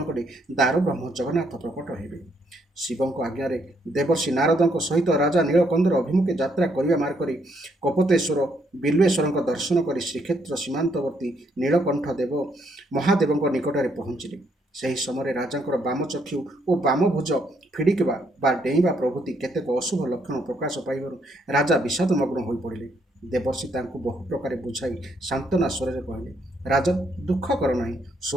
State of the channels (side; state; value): both; normal; correlation 0.73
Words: କରି ଦାରୁବ୍ରହ୍ମ ଜଗନ୍ନାଥ ପ୍ରକଟ ହେବେ। ଶିବଙ୍କ ଆଜ୍ଞାରେ ଦେବର୍ଷି ନାରଦଙ୍କ ସହିତ ରାଜା ନୀଳକନ୍ଦର ଅଭିମୁଖେ ଯାତ୍ରା କରିବା ମାର୍ଗରେ କପୋତେଶ୍ୱର ବିଲ୍ୱେଶ୍ୱରଙ୍କ ଦର୍ଶନ କରି ଶ୍ରୀକ୍ଷେତ୍ର ସୀମାନ୍ତବର୍ତ୍ତୀ ନୀଳକଣ୍ଠ ମହାଦେବଙ୍କ ନିକଟରେ ପହଞ୍ଚିଲେ। ସେହି ସମୟରେ ରାଜାଙ୍କର ବାମଚକ୍ଷୁ ଓ ବାମଭୁଜ ଫିଡ଼ିକିବା ବା ଡେଇଁବା ପ୍ରଭୃତି କେତେକ ଅଶୁଭ ଲକ୍ଷଣ ପ୍ରକାଶ ପାଇବାରୁ ରାଜା ବିଷାଦମଗ୍ନ ହୋଇପଡ଼ିଲେ। ଦେବର୍ଷି ତାଙ୍କୁ ବହୁ ପ୍ରକାରେ ବୁଝାଇ ସାନ୍ତ୍ୱନା ସ୍ୱରରେ କହିଲେ, ରାଜନ୍, ଦୁଃଖ କର ନାହିଁ।